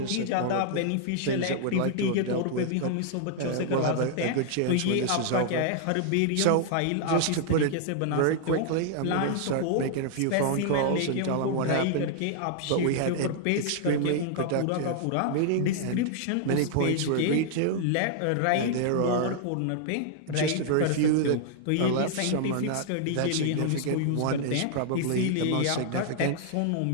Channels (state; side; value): different; both; correlation -0.01